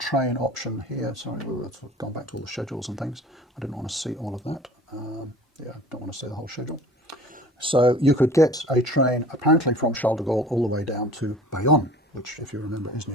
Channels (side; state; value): both; normal; correlation 0.45